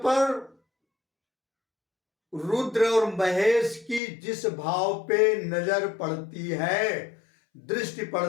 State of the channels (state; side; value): drops out; right; at 4.0 s